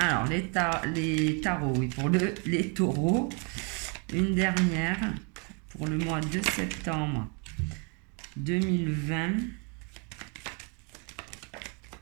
les tarots, oui, pour les taureaux. Une dernière pour le mois de septembre 2020.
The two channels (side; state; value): left; quieter; 35.3 dB